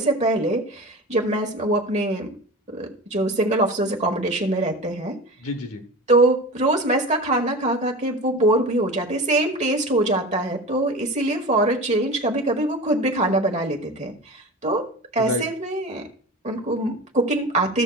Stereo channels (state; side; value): normal; both; correlation 0.31